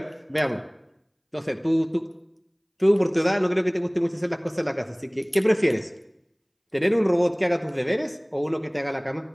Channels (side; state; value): both; identical; correlation 1.00